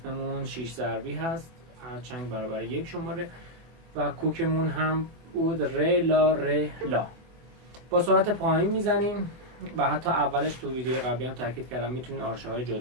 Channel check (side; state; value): left; late; 24 ms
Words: 6 ضربی هست، هر چنگ برابر 1 شماره و کوکمون هم بود ر لا ر لا. با سرعت پایین میزنیم و حتی اولش تو ویدیو قبلی هم تاکید کردم میتونید آرشه های